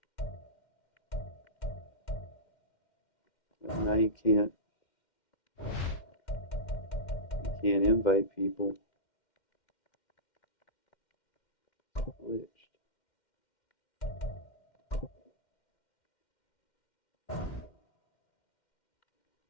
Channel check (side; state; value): right; late; 2.1 ms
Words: Now you can't invite people. Glitched.